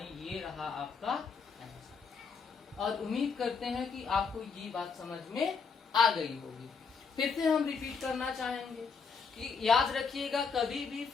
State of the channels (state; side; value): quieter; right; 5.4 dB